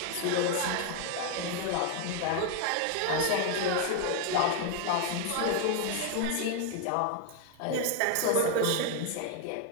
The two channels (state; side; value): different; both; correlation 0.00